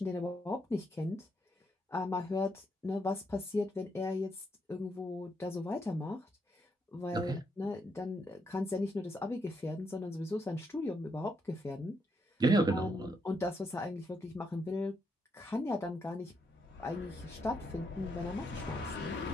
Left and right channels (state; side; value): normal; both; correlation 0.78